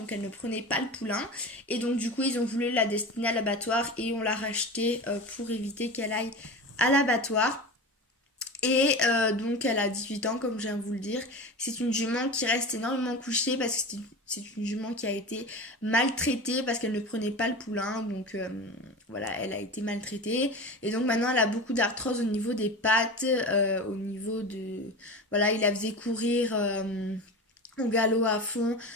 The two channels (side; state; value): both; normal; correlation 0.29